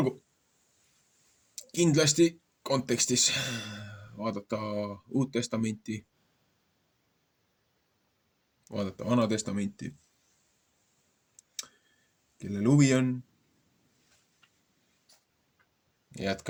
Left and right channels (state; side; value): identical; both; correlation 1.00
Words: kindlasti kontekstis vaadata Uut Testamenti, vaadata Vana Testamenti, kellel huvi on.